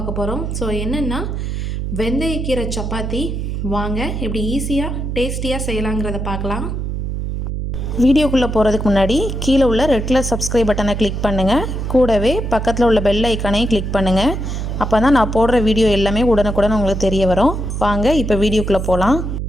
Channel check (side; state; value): right; noise; hum, 3 dB below the sound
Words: போகிறோம். ஸோ என்னென்னா வெந்தயக்கீரை சப்பாத்தி. வாங்க எப்படி ஈஸியாக டேஸ்டியாக செய்யலாங்கிறத பார்க்கலாம். வீடியோக்குள்ளே போகிறதுக்கு முன்னாடி கீழே உள்ள ரெட் கலர் சப்ஸ்கிரைப் பட்டனை கிளிக் பண்ணுங்கள். கூடவே பக்கத்தில் உள்ள பெல் ஐக்கானையும் கிளிக் பண்ணுங்கள். அப்போ தான் நான் போடுற வீடியோ எல்லாமே உடனுக்குடன் உங்களுக்கு தெரிய வரும். வாங்க இப்போ வீடியோக்குள்ளே போகலாம்.